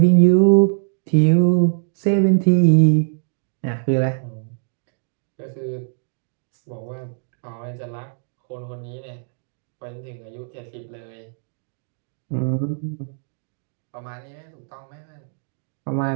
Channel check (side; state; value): left; silent; digital silence